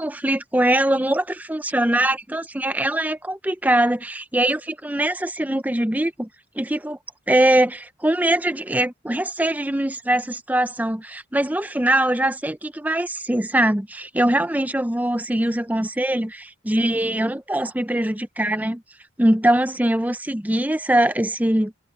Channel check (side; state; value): both; normal; correlation 0.83